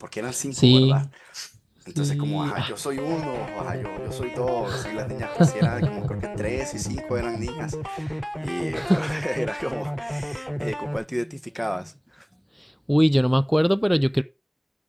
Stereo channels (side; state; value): both; identical; correlation 1.00